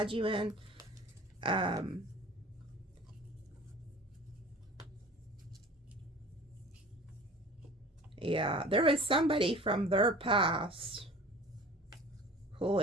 you in. Yeah, there was somebody from their past who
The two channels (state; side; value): normal; both; correlation 0.42